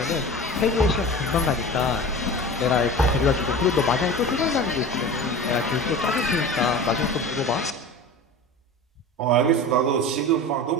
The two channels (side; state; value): both; normal; correlation 0.33